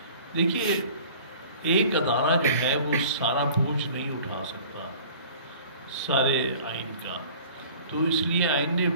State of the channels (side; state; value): both; inverted; correlation -0.47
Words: देखिए, एक अदारा जो है वो सारा बोझ नहीं उठा सकता सारे आइन का, तो इसलिए आइन ने